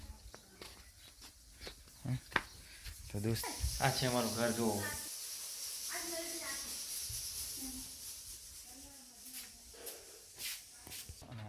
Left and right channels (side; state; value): both; identical; correlation 1.00